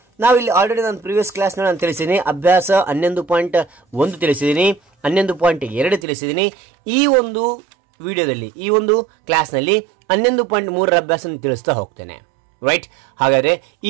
ನಾವಿಲ್ಲಿ ಆಲ್ರೆಡಿ ನಾನು ಪ್ರೀವಿಯಸ್ ಕ್ಲಾಸ್ ನಾನು ತಿಳಿಸಿದ್ದೀನಿ. ಅಭ್ಯಾಸ 11.1 ತಿಳಿಸಿದ್ದೀನಿ, 11.2 ತಿಳಿಸಿದ್ದೀನಿ. ಈ ಒಂದು ವಿಡಿಯೋದಲ್ಲಿ ಈ ಒಂದು ಕ್ಲಾಸ್ನಲ್ಲಿ 11.3 ಅಭ್ಯಾಸ ತಿಳಿಸ್ತಾ ಹೋಗ್ತೇನೆ. ರೈಟ್. ಹಾಗಾದ್ರೆ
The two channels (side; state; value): left; drops out; at 6.1 s